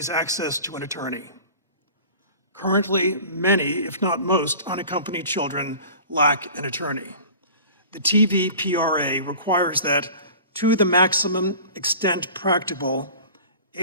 access to an attorney. Currently, many, if not most, unaccompanied children lack an attorney. The TVPRA requires that, to the maximum extent practicable,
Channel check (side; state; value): both; inverted; correlation -0.42